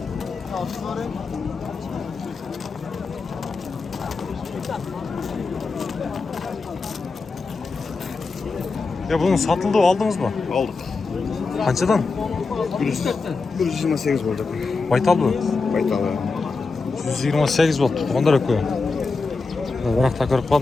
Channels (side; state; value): right; quieter; 4.1 dB